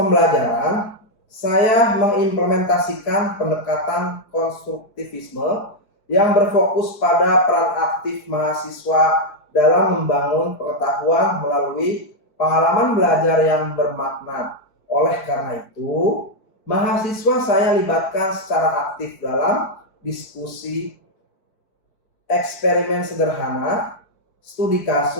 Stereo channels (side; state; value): right; late; 4.5 ms